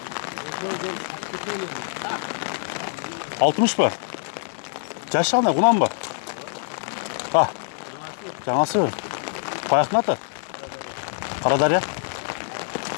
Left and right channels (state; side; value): silent; right; digital silence